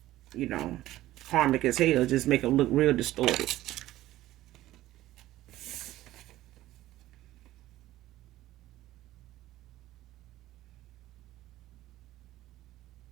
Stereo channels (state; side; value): quieter; left; 15.3 dB